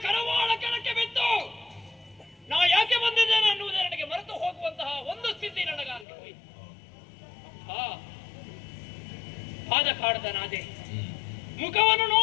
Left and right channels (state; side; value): drops out; right; at 6.1 s